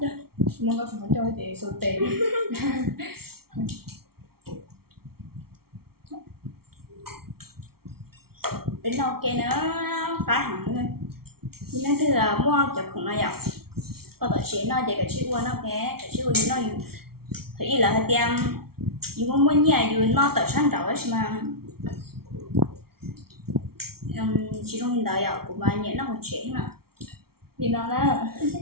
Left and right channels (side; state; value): left; late; 0.94 ms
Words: Muốn có phải cho chị số tiền. Đến đâu kia nó phá hẳn luôn. Nhưng nó thứ là mua chụp không nó dọc. Có tổ chế nó để cái chữ qua nó cái chữ qua nó dùng. Thì là hơi tiêm dùng muốn nhà dùng nó tự sáng đầu ấy mà chỉ trong hiện đại của bà nhớ nó một chế mà Thì nó đó.